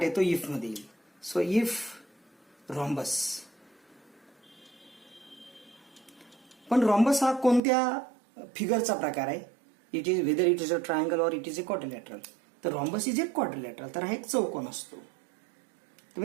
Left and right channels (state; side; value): drops out; left; at 7.6 s